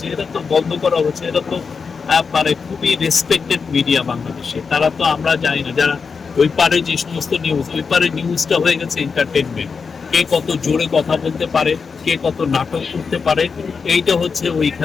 এটা তো বন্ধ করা হচ্ছে। এটা তো মানে খুবই রেসপেক্টেড মিডিয়া বাংলাদেশে। তারা তো আমরা জানি না, যারা ওই পারে যে সমস্ত নিউজ, ওই পারে নিউজটা হয়ে গেছে এন্টারটেনমেন্ট। কে কত জোরে কথা বলতে পারে, কে কত নাটক করতে পারে, এইটা হচ্ছে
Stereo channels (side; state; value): right; quieter; 5.3 dB